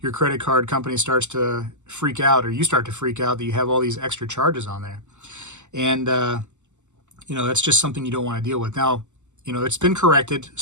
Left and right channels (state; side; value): late; left; 0.84 ms